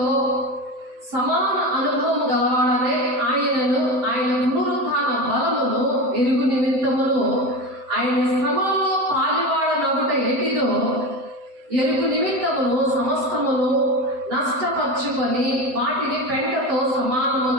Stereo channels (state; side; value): late; left; 7.8 ms